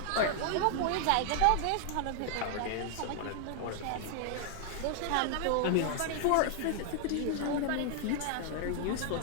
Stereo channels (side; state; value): both; different; correlation 0.00